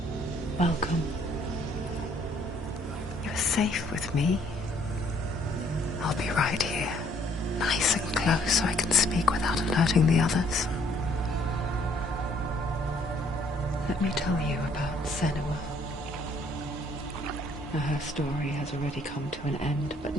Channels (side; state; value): both; normal; correlation 0.63